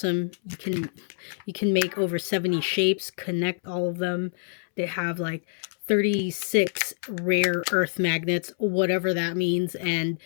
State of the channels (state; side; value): silent; right; 61 dB below the other